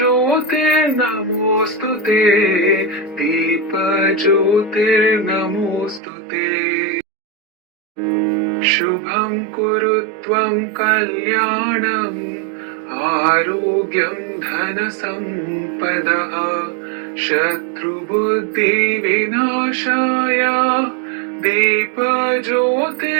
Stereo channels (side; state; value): left; drops out; at 6.0 s